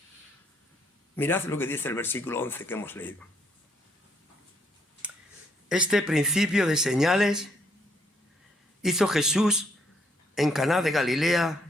Mirad lo que dice el versículo 11 que hemos leído. Este principio de señales hizo Jesús en Caná de Galilea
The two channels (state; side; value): normal; both; correlation 0.70